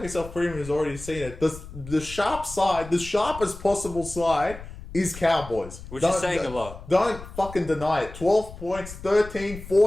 Premium has already seen it. The sharp side, the sharpest possible side is Cowboys. Which is saying a lot. Don't fucking deny it. 12 points, 13,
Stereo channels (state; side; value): noise; left; rumble, 14 dB below the sound